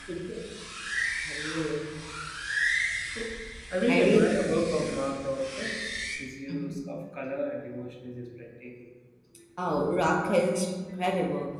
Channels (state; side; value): identical; both; correlation 1.00